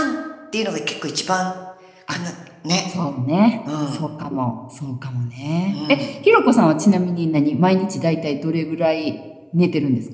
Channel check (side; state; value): both; identical; correlation 1.00